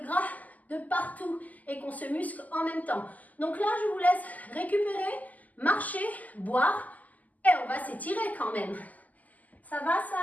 de partout et qu'on se muscle en même temps. Donc là, je vous laisse récupérer, marcher, boire et on va s'étirer quand même. Ça va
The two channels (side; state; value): right; late; 0.079 ms